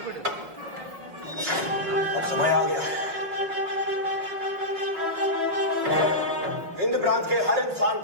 समय आ गया हिंद प्रांत के हर इंसान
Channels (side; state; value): left; late; 6.0 ms